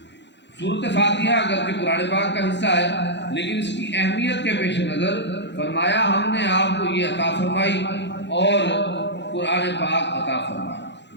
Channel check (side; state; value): right; late; 0.52 ms